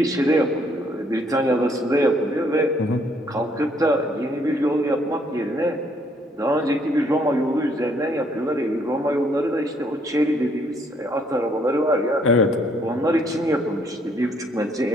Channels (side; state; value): both; normal; correlation 0.67